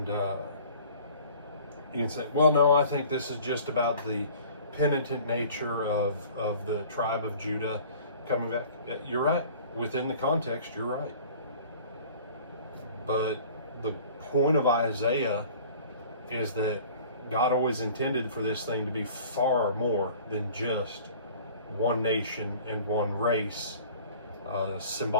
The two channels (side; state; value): both; inverted; correlation -0.47